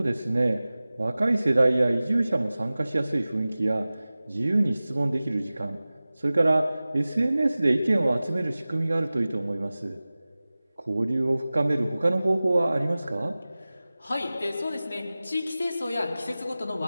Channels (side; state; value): both; inverted; correlation -0.97